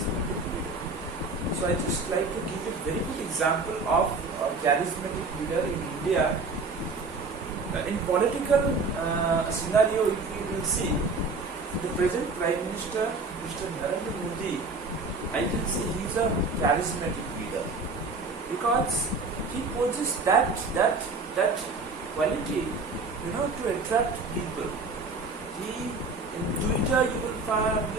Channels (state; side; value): quieter; left; 3.7 dB